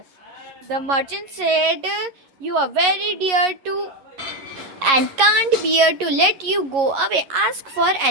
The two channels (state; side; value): late; left; 11 ms